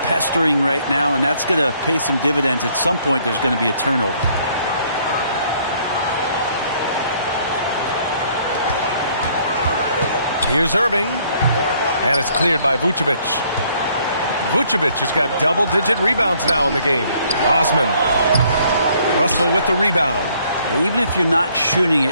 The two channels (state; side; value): inverted; both; correlation -0.64